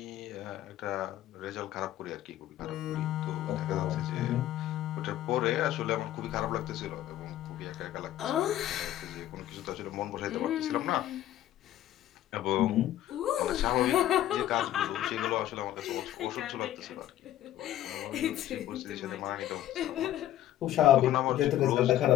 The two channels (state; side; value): quieter; right; 13.0 dB